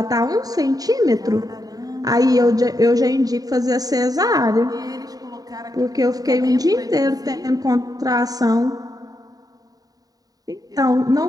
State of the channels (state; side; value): late; left; 0.18 ms